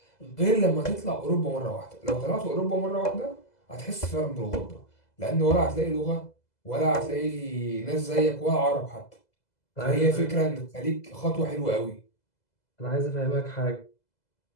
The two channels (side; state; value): right; late; 2.0 ms